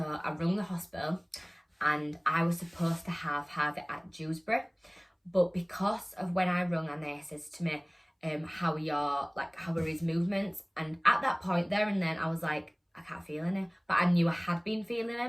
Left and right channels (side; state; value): both; identical; correlation 1.00